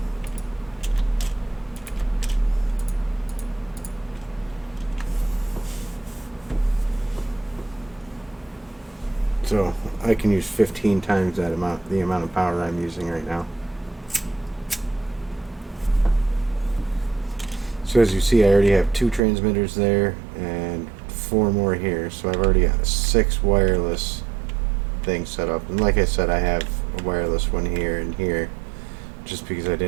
So I can use 15 times that amount, the amount of power I'm using right now. So as you see, I already have 2 transmitters there and 4 more here. So I've already got 6 wireless things set up. And like I said, I have a wireless one here and here, just because I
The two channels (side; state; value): left; drops out; at 19.2 s